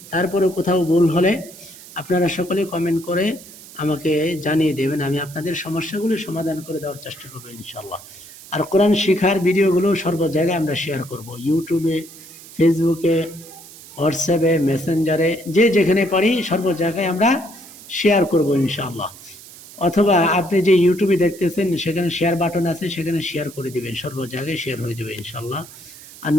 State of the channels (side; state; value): right; noise; hiss, 18 dB below the sound